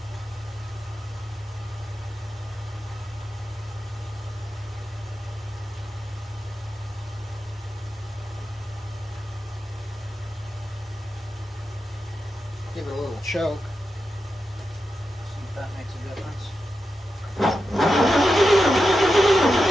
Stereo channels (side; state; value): both; normal; correlation 0.89